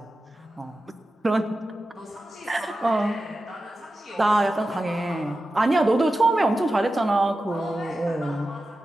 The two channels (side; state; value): both; normal; correlation 0.93